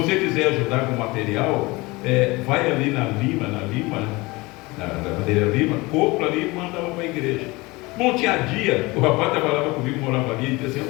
quiser ajudar com material, vai ali na madeira Lima, compra ali e manda para a igreja. Bom, tinha dia, o rapaz trabalhava comigo, morava ali, e disse assim:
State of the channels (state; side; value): quieter; right; 23.0 dB